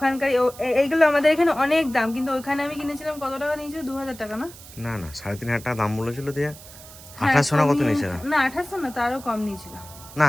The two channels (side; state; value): right; noise; hiss, 18 dB below the sound